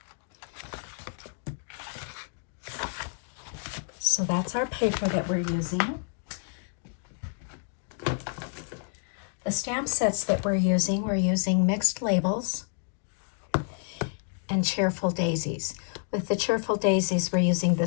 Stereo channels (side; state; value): right; silent; digital silence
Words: So that's our paper that we're using. The stamp sets that we're using Mixed Labels and Cheerful Daisies. With the Cheerful Daisies, we're using the